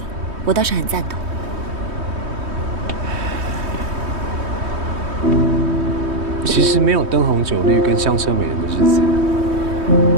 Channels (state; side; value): late; left; 3.2 ms